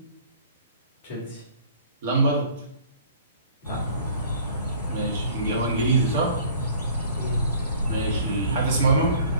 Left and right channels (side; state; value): both; inverted; correlation -0.51